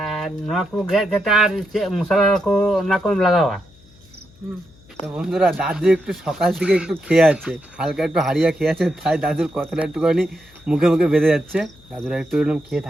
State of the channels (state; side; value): noise; left; hum, 27 dB below the sound